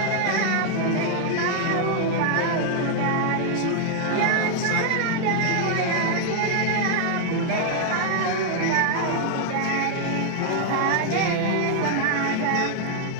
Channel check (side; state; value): both; different; correlation 0.00